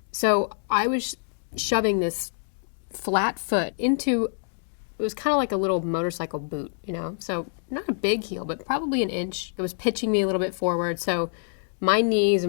So I was shoving this flat foot into, it was kind of like a little motorcycle boot, so not a big heel, but probably an inch. It was pitching me a little bit forward, so my knees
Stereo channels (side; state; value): right; silent; digital silence